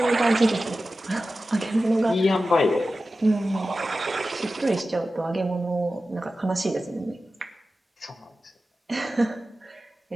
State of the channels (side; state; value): both; normal; correlation 0.94